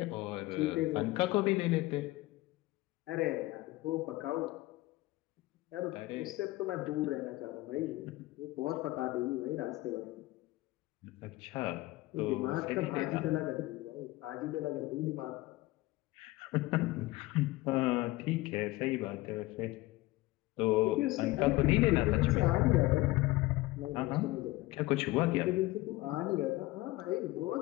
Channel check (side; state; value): right; quieter; 19.4 dB